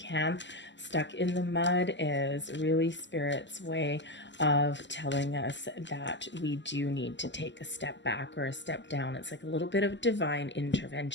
Stuck in the mud is really Spirit's way of telling us that we do need to take a step back or a step down. It's like a little bit of divine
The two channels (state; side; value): late; right; 0.53 ms